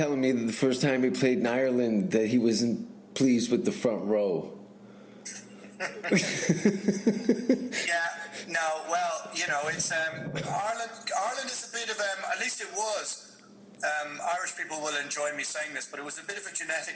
me that the first time he played in Ireland that he wasn't pleased with the front row. Yeah, no, well, it's Ireland is a bit of at least it was. Irish people will enjoy me saying this, but it was a bit of a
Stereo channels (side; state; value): both; identical; correlation 1.00